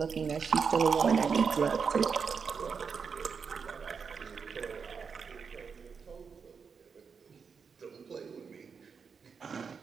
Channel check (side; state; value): left; quieter; 5.9 dB